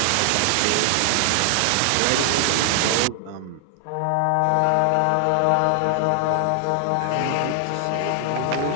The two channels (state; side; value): different; both; correlation 0.00